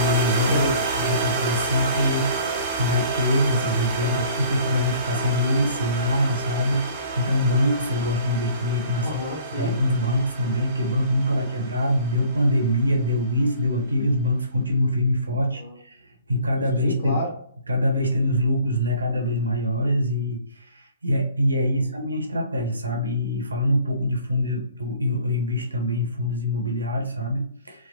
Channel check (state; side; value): inverted; both; correlation -0.53